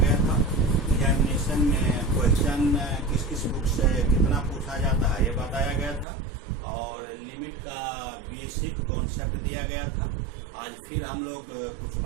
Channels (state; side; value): drops out; left; at 6.1 s